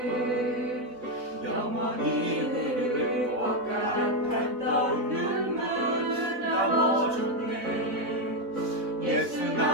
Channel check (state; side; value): late; left; 4.0 ms